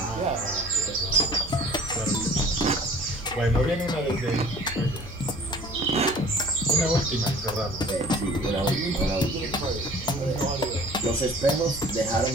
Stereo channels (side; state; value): both; normal; correlation 0.48